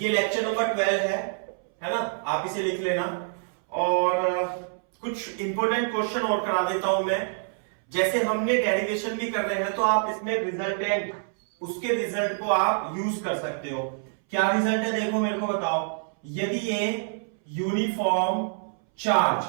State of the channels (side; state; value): left; silent; 61 dB below the other